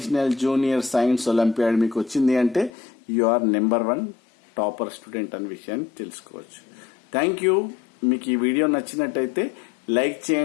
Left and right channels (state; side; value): drops out; right; at 2.7 s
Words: junior science olympiad. మీకు వచ్చింది అంటే you are number 1 topper student అనే విషయాన్ని తెలుసుకోవచ్చు. Thank you. మీకు ఈ వీడియో నచ్చినట్టయితే లైక్